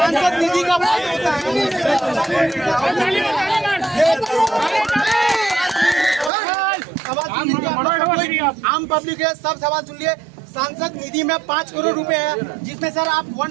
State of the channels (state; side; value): drops out; left; at 6.3 s